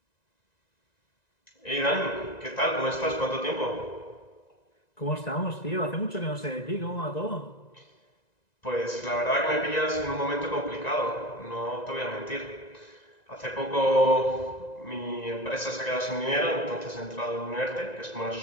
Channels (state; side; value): late; right; 1.9 ms